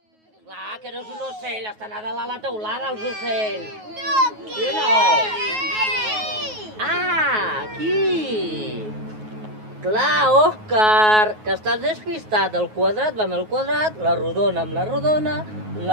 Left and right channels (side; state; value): left; late; 9.4 ms